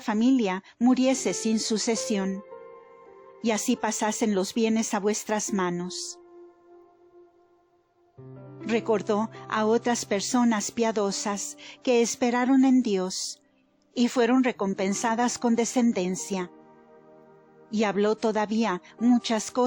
muriese sin sucesión, y así pasasen los bienes a vuestras manos. Recordó a otras personas piadosas que esperaron en Dios y fueron recompensadas con descendencia, y habló todavía muchas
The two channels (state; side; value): identical; both; correlation 1.00